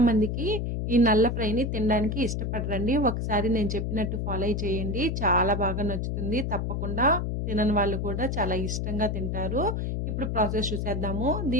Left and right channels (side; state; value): left; noise; hum, 1 dB below the sound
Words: మందికి ఈ నల్ల ఫ్రైని తినడానికి ఇష్టపడరండి. ఒకసారి నేను చెప్పినట్టు ఫాలో చేయండి, చాలా బాగా నచ్చుతుంది. తప్పకుండా తినని వాళ్ళు కూడా చాలా ఇష్టంగా తింటారు. ఇప్పుడు ప్రాసెస్ చూసేద్దాము.